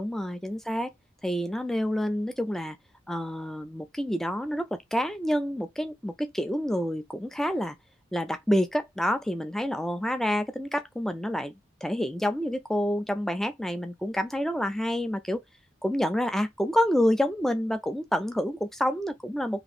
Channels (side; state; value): both; normal; correlation 0.92